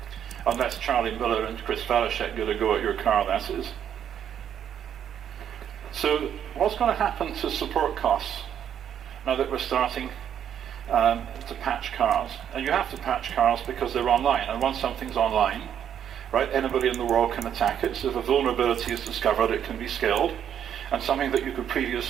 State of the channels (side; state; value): left; quieter; 9.3 dB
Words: Unless Charlie Miller and Chris Falashek get a go at your car, that is. So what's going to happen to support costs now that we're starting to patch cars? And you have to patch cars because they're online, and once something's online, right, anybody in the world can attack it. So if a vulnerability is discovered, it can be scaled, and something that you could